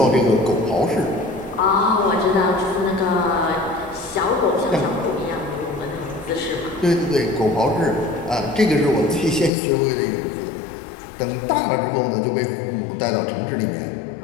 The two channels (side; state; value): right; drops out; at 9.5 s